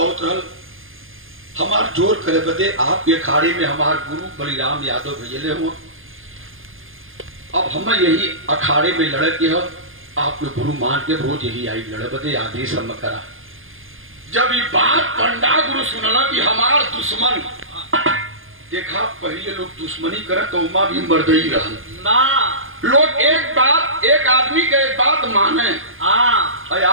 रहल, हमार जोर करे बदे आपके अखाड़े में हमार गुरु बलिराम यादव भेजले हुआ, अब हम यही अखाड़े में लड़े के हो, आपके गुरु मान के रोज यही आई लड़े बदे आदेश हम करा। जब ये बात पंडा गुरु सुनला कि हमार दुश्मन, देखा पहले लोग दुश्मनी करे तो उमा भी मर्दई रहल ना, लोग एक बात, एक आदमी के एक बात माने,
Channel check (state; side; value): late; left; 0.59 ms